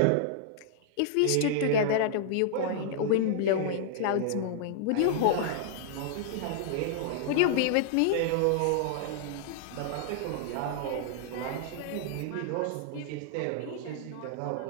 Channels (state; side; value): different; both; correlation -0.01